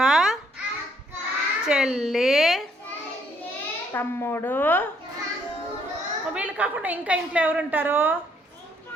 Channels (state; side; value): normal; both; correlation 0.68